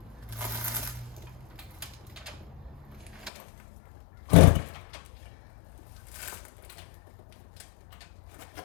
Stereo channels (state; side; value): drops out; right; at 3.3 s